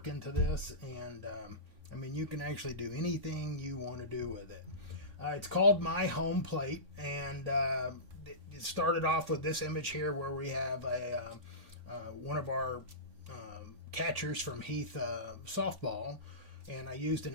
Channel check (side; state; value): left; late; 3.5 ms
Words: into this, and I mean, you can actually do anything you want to do with it. It's called My Home Plate, and it started off with this image here where we have one of our catchers from Heath softball, and I used an